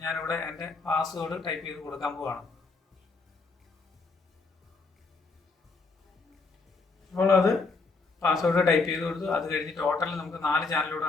ഞാനിവിടെ എൻ്റെ പാസ്വേഡ് ടൈപ്പ് ചെയ്ത് കൊടുക്കാൻ പോവാണ്. അപ്പോൾ അത് പാസ്വേഡ് ടൈപ്പ് ചെയ്ത് കൊടുത്തു. അത് കഴിഞ്ഞ് ടോട്ടൽ നമുക്ക് 4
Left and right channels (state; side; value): quieter; right; 4.0 dB